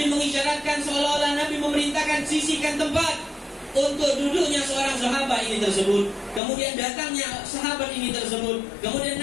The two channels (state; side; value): drops out; right; at 6.4 s